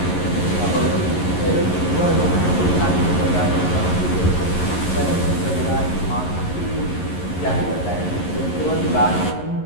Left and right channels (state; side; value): late; right; 11 ms